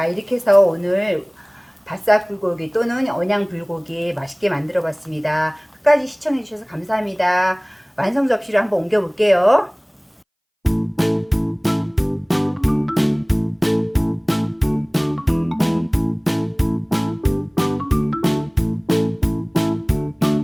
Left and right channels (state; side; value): identical; both; correlation 1.00